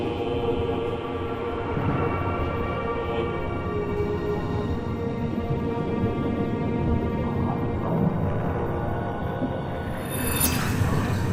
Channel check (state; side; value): identical; both; correlation 1.00